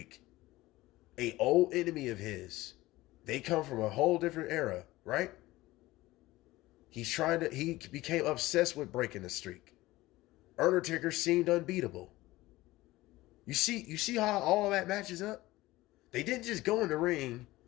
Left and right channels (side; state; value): right; quieter; 18.3 dB